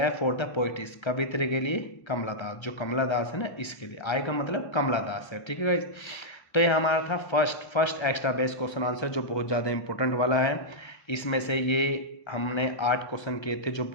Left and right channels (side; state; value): right; late; 1.3 ms